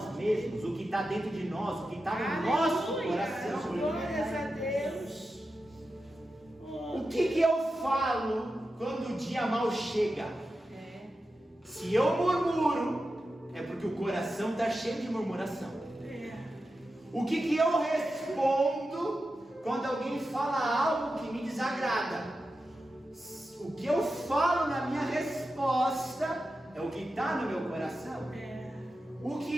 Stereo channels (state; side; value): normal; both; correlation 0.91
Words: mesmos, o que está dentro de nós, o que está no nosso coração. Glórias a Deus. O que eu falo quando o dia mal chega? Se eu murmuro, é porque o coração está cheio de murmuração. O que eu respondo quando alguém fala algo que me desagrada? O que eu falo na minha resposta é o que está no meu coração. O